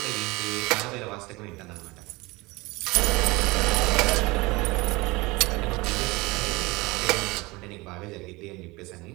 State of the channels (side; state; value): left; quieter; 23.2 dB